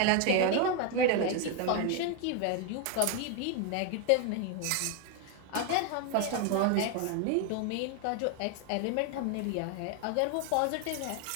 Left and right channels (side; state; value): both; different; correlation 0.01